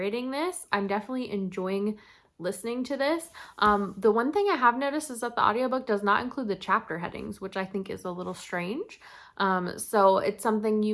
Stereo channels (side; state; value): both; identical; correlation 1.00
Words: this. I'm definitely enjoying listening to this. The one thing I have noticed is that the audiobook does not include the chapter headings, which I think is a little strange. So it's something